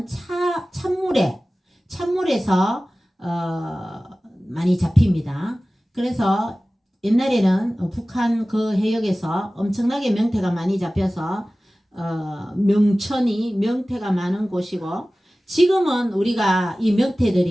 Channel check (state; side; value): normal; both; correlation 0.97